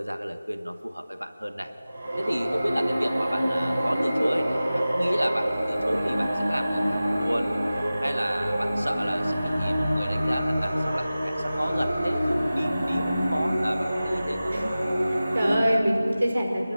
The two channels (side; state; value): both; inverted; correlation -0.96